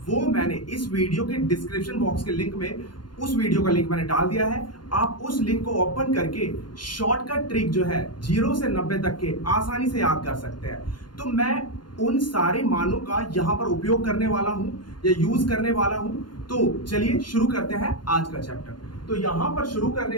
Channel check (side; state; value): right; late; 0.71 ms